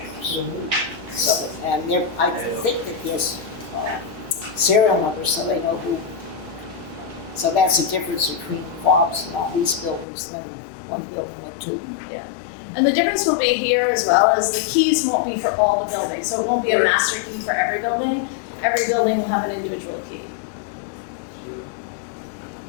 So, and I think that there's serial numbers, so they know who. So that's the difference between fobs in all these buildings than one building with 2. Yeah. And the difference will be here as well is the keys won't be for all the buildings. So it won't be a master key for every building. Every building will have an individual key.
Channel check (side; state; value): right; drops out; at 10.1 s